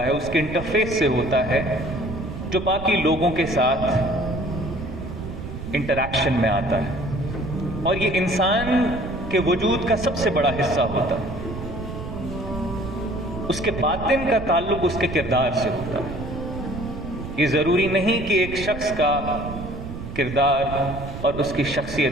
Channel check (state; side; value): noise; right; rumble, 9 dB below the sound